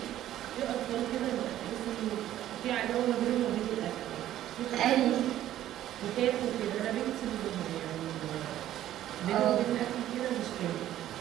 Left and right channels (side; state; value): left; quieter; 12.7 dB